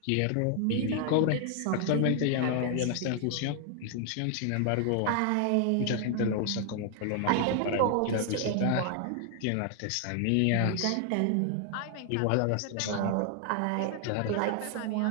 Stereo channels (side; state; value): both; different; correlation 0.00